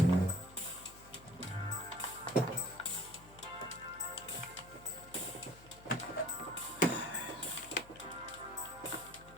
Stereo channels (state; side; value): noise; left; hum, 19 dB below the sound